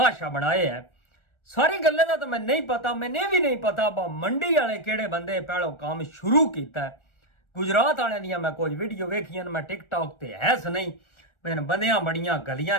बनाए है। सारी गल्लें दा तो मैं नहीं पता, मैंने भी नहीं पता बा मंडी वाले केड़े बंदे पहलो काम शुरू किया है। गुजरात वाले दियां मैं कुछ वीडियो वेखियां, मैं टिकटॉक ते है नहीं, मैंने बंदियां बड़ियां गलियां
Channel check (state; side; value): late; right; 1.4 ms